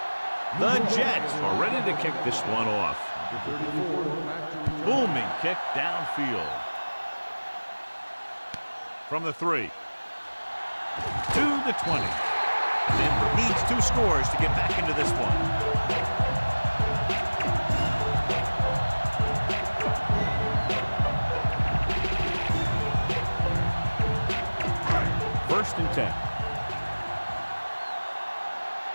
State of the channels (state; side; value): inverted; both; correlation -1.00